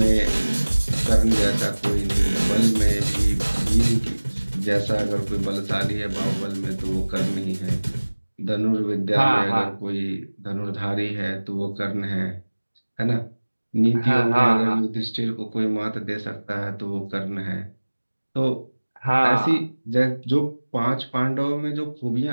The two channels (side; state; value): both; inverted; correlation -1.00